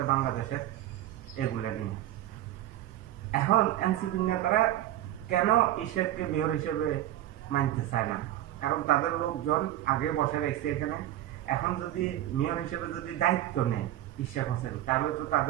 বাংলাদেশের, এগুলো নিয়ে। এখন এনসিপির নেতারা কেন ইশরাককে মেয়র হিসেবে মানতে চায় না? কারণ তাদের লোকজন আগে বসে রেখেছে এখানে। এখন যদি মেয়র হিসেবে যদি দায়িত্ব নেয় ইশরাক হোসেন, তাহলে তো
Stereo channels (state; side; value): quieter; left; 13.7 dB